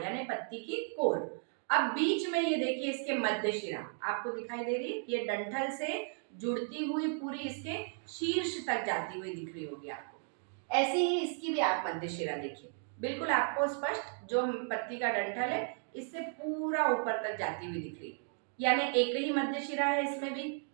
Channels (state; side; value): silent; left; 55 dB below the other